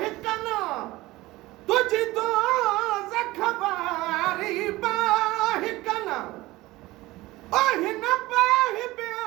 कना, तुझ दोज़ख वारी बाहि कना। ओ हिन बाहि में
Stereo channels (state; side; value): quieter; left; 19.0 dB